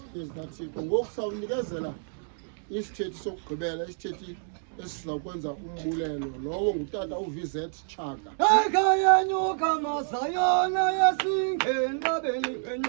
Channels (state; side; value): silent; left; digital silence